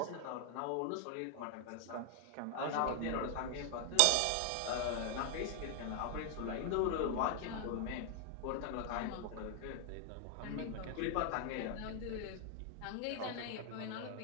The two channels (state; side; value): different; both; correlation 0.00